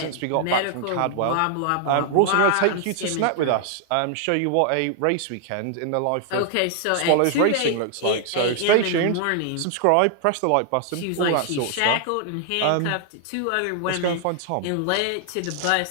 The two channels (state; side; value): different; both; correlation 0.00